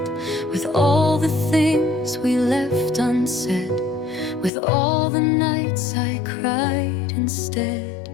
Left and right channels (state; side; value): drops out; right; at 4.5 s